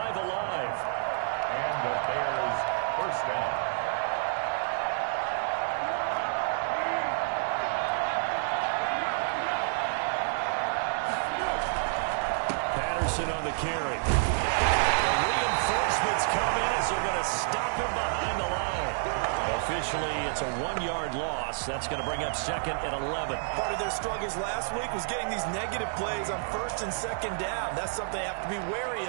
alive. And the Bears 1st down. On the carry. The reinforcements come in as they're going to stop him behind the line. Officially, it's a 1-yard loss. That's going to bring up 2nd and 11. Part of their struggles last week was getting these negative plays on 1st and 2nd down. That's something they have to be wary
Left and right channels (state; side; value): silent; left; digital silence